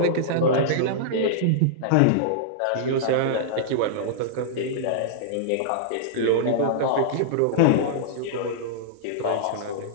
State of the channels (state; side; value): different; both; correlation -0.02